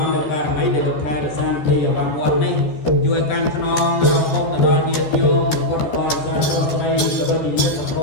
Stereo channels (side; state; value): right; late; 13 ms